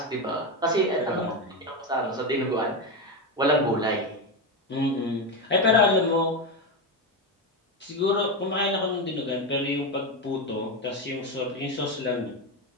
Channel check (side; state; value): both; normal; correlation 0.13